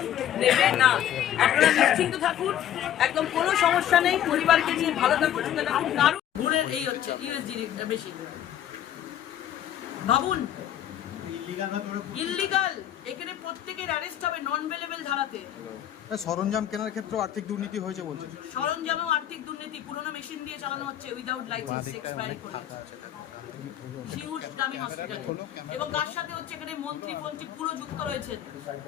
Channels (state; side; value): quieter; right; 11.0 dB